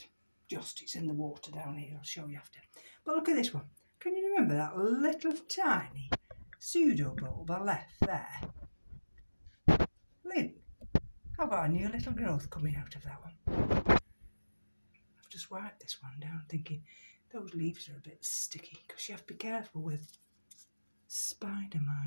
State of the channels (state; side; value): inverted; both; correlation -1.00